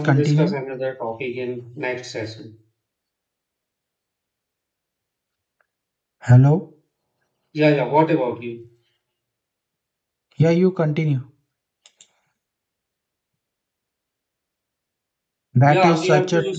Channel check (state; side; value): identical; both; correlation 1.00